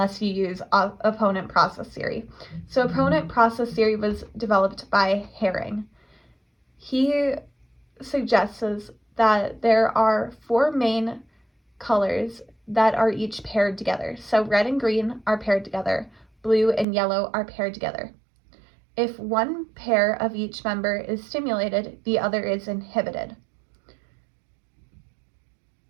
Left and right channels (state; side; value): drops out; left; at 16.9 s